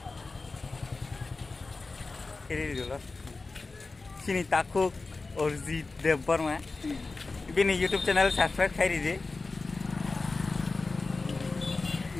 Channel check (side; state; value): right; quieter; 3.7 dB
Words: kiri dulu sini takuk Orzi Deborma ini YouTube channel subscribe kiri deh